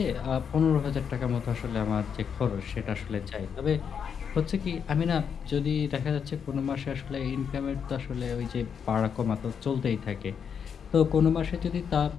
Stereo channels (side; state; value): right; quieter; 7.2 dB